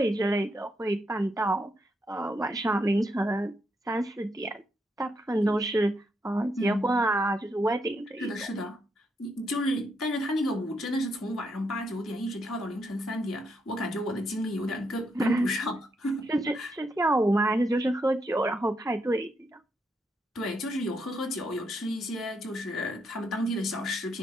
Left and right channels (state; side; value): normal; both; correlation 0.79